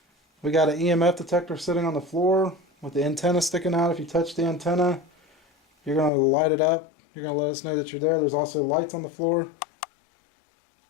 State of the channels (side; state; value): right; drops out; at 6.1 s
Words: we got an EMF detector sitting on the floor with the antenna sticking out. If you touch the antenna, you're going to light it up. You're going to let us know that you're there. There's also lights on the floor.